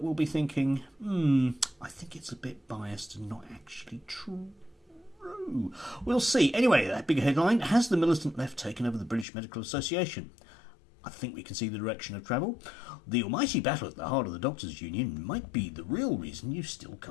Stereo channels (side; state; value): right; drops out; at 9.2 s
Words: will be thinking, I think it's a bit biased and not actually true. We'll see. Anyway, that big headline: has the militant left taken over the British Medical Association? I think we can see the direction of travel. The almighty battle at the heart of the Doctors' Union might be the real reason you still